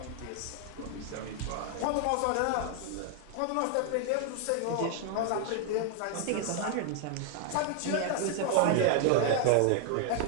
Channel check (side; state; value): both; different; correlation 0.00